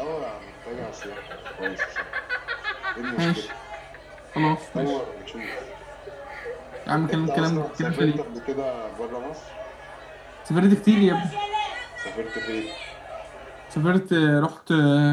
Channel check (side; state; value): both; identical; correlation 1.00